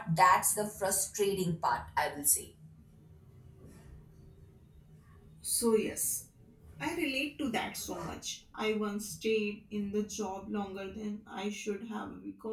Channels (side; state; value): both; identical; correlation 1.00